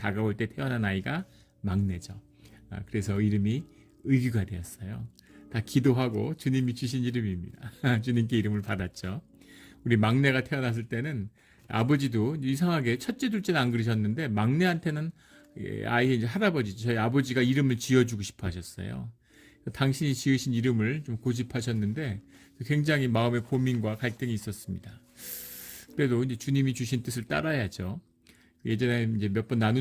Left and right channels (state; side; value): identical; both; correlation 1.00